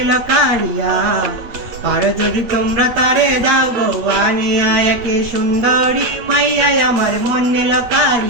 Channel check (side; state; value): left; late; 8.8 ms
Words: কারিয়া, আর যদি তোমরা তারে দাও গো আনিয়া। একে সুন্দরী মাইয়াই আমার মন নিল